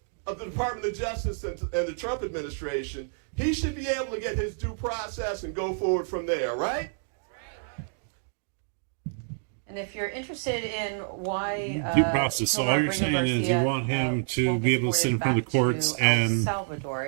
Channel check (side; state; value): left; silent; digital silence